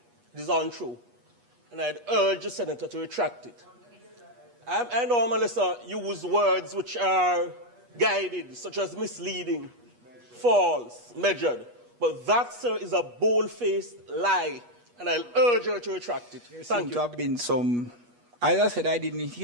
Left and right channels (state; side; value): late; left; 8.3 ms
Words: It is untrue. And I'd urge the senator to retract it. I normally, sir, use words which are guided, such as misleading, false, measured. But that, sir, is a bold-faced lie, and I'll urge her to retract it. There seems to have been some, as I said, I didn't